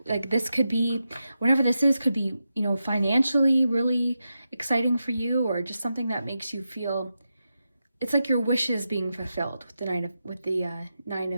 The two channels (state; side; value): inverted; both; correlation -0.89